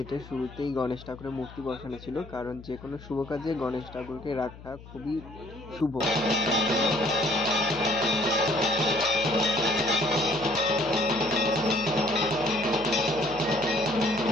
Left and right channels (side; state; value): left; noise; hum, 17 dB below the sound